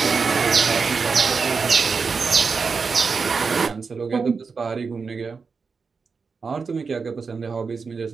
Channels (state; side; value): quieter; left; 5.0 dB